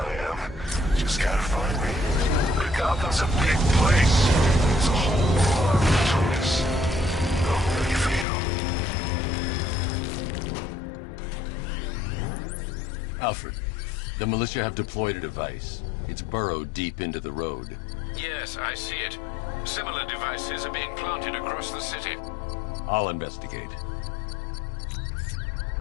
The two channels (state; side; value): drops out; right; at 8.2 s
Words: am. Just gotta find me. But Gotham's a big place. There's a whole lot between us. How do you feel? Alfred, the militia have deployed a device. It's burrowed deep into the road. Yes, I see it. Similar devices are being planted across the city. I'll investigate.